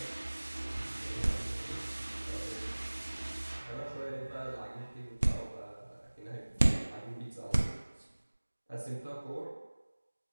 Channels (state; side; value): inverted; both; correlation -1.00